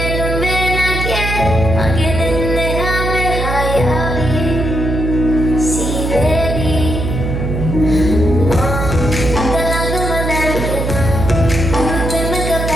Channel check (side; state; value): right; noise; hum, 2 dB below the sound